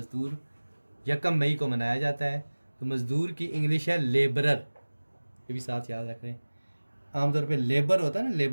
1 मई को मनाया जाता है। तो मज़दूर की इंग्लिश है लेबरर, ये भी साथ याद रख रहे हैं। आमतौर पे लेबर होता है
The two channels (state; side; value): inverted; both; correlation -1.00